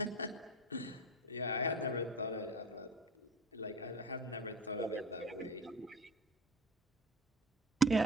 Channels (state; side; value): normal; both; correlation 0.31